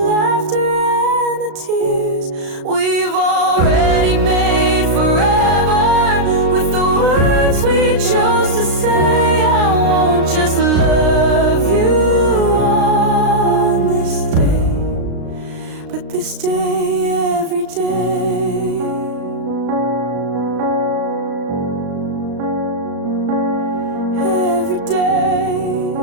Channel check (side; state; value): left; late; 36 ms